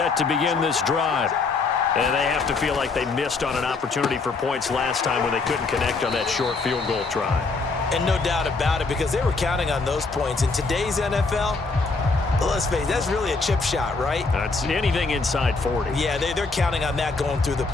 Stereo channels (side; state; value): right; quieter; 4.0 dB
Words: to begin this drive. And they have to feel like they missed on an opportunity for points last time when they couldn't connect on that short field goal try. And no doubt about it, because they were counting on those points. In today's NFL, let's face it, that's really a chip shot, right? That's anything inside 40. Yeah, they're counting on that going through the